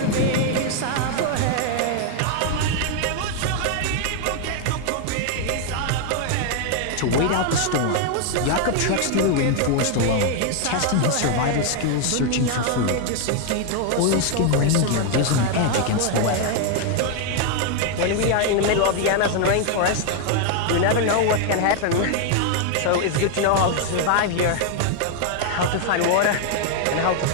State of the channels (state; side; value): different; both; correlation 0.00